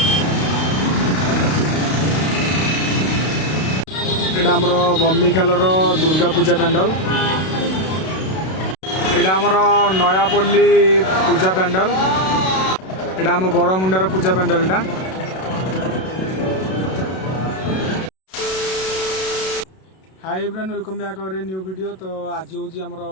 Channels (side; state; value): right; late; 32 ms